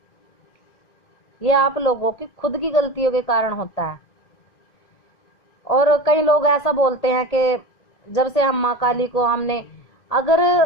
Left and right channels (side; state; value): right; late; 1.8 ms